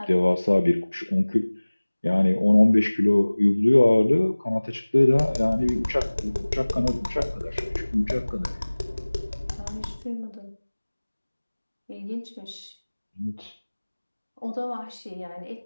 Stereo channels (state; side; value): inverted; both; correlation -1.00